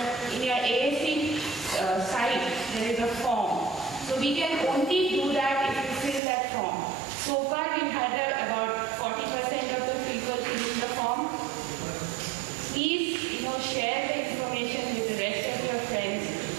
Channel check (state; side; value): drops out; left; at 6.2 s